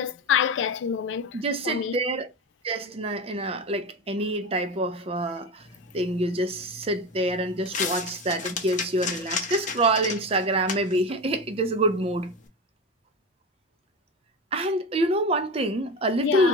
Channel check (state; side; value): normal; both; correlation 0.23